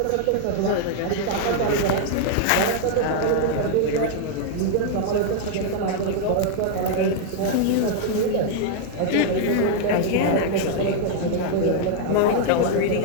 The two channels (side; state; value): both; different; correlation 0.00